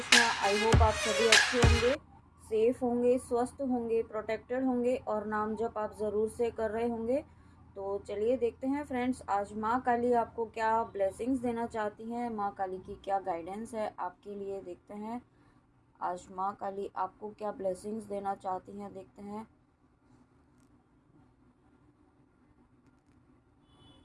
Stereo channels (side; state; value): both; identical; correlation 1.00